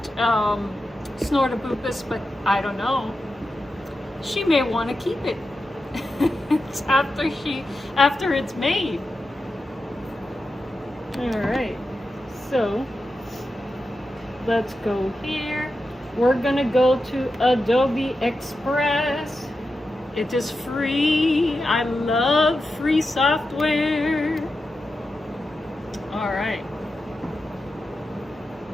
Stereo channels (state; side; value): normal; both; correlation 0.90